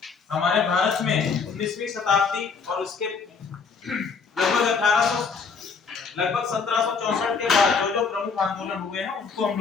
हमारे भारत में 19वीं शताब्दी और उसके लगभग 1764 के बाद जो प्रमुख आंदोलन हुए हैं उनको हम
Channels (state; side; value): quieter; right; 5.3 dB